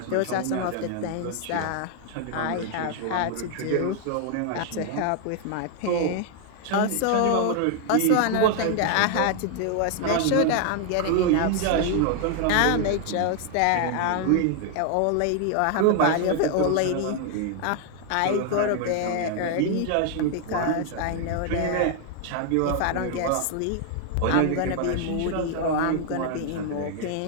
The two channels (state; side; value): different; both; correlation 0.00